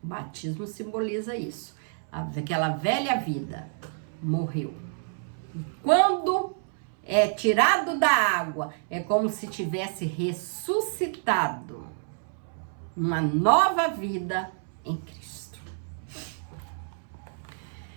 O batismo simboliza isso. Aquela velha vida morreu. E quando é tirado da água, é como se tivesse ressuscitado uma nova vida em Cristo.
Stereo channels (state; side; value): silent; left; 59 dB below the other